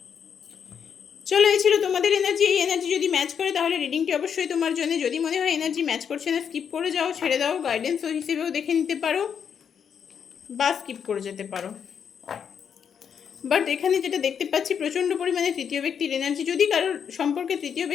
চলো, এই ছিল তোমাদের এনার্জি। এই এনার্জি যদি ম্যাচ করে তাহলে রিডিংটি অবশ্যই তোমার জন্য। যদি মনে হয় এনার্জি ম্যাচ করছে না, স্কিপ করে যাও, ছেড়ে দাও, গাইডেন্স হিসেবেও দেখে নিতে পারো বা স্কিপ করে যেতে পারো। বাট এখানে যেটা দেখতে পাচ্ছি, প্রচণ্ড পরিমাণে তৃতীয় ব্যক্তির এনার্জি। যদি কারোর সম্পর্কে তৃতীয়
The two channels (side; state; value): right; quieter; 7.5 dB